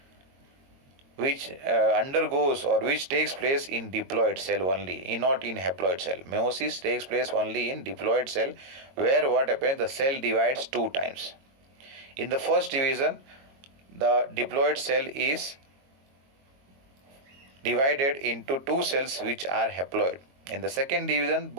which undergoes or which takes place in diploid cell only, not in haploid cell. Meiosis takes place only in diploid cell, where what happens? The cell divides 2 times. In the first division, the diploid cell is divided into 2 cells which are haploid. In the second division,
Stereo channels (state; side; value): late; left; 22 ms